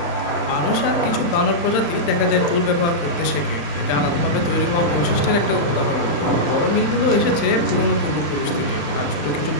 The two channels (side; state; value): right; late; 35 ms